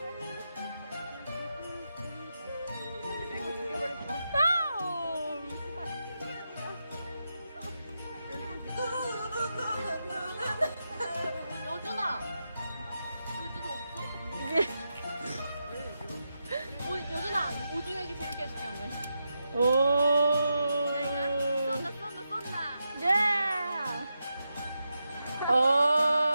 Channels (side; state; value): both; inverted; correlation -0.87